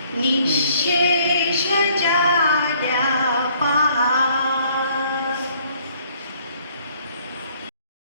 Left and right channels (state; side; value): inverted; both; correlation -0.62